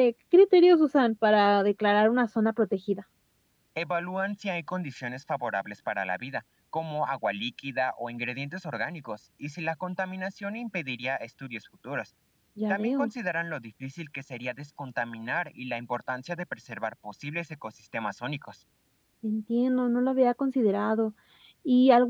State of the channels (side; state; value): both; identical; correlation 1.00